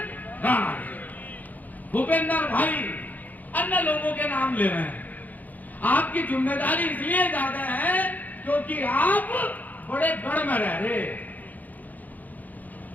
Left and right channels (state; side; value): late; right; 0.081 ms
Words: राणा, भूपेंद्र भाई, अन्य लोगों के नाम ले रहे हैं। आपकी जिम्मेदारी इसलिए ज्यादा है क्योंकि आप बड़े गढ़ में रह रहे,